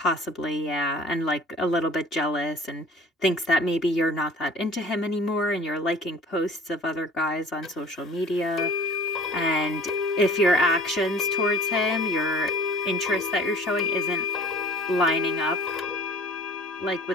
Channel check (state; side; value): normal; both; correlation 0.47